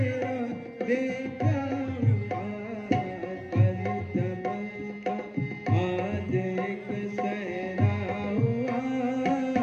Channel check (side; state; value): both; identical; correlation 1.00